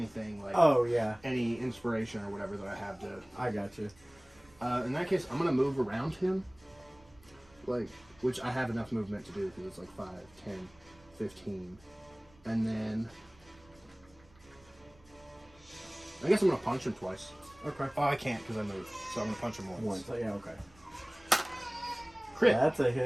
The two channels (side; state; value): right; noise; rumble, 28 dB below the sound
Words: like Oh yeah, any inspiration or whatever that I have to. I got you. In that case, I'm gonna move around him, like which I have enough movement to do because it's like 5, 10, 15, and then I guess I'm gonna punch him twice. Okay. Oh, I can't because I moved, so I'm gonna punch him once. Once. Yeah. Okay. Crit. That's a